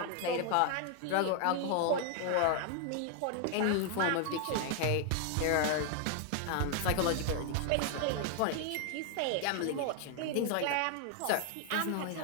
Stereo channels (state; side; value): different; both; correlation 0.00